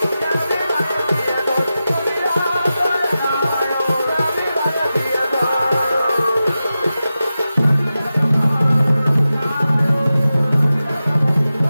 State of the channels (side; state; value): both; inverted; correlation -0.93